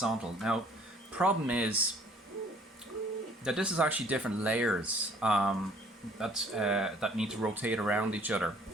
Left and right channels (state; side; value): normal; both; correlation 0.57